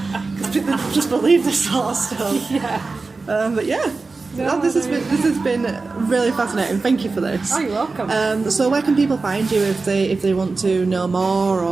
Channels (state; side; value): quieter; left; 3.9 dB